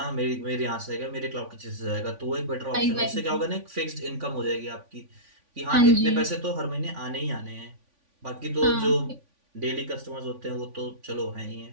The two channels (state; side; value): late; left; 3.5 ms